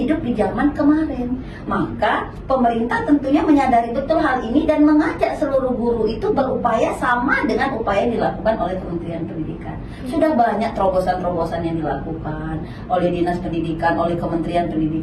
di zaman kemarin. Maka pemerintah tentunya menyadari betul hal ini dan mengajak seluruh guru itu berupaya sama dengan upaya yang dilakukan oleh Kementerian Pendidikan. Sudah banyak terobosan-terobosan yang dilakukan oleh Dinas Pendidikan, oleh Kementerian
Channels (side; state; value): both; identical; correlation 1.00